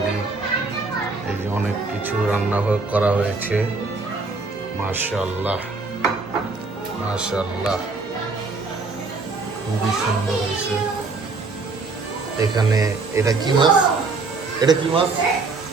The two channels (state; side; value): quieter; left; 3.9 dB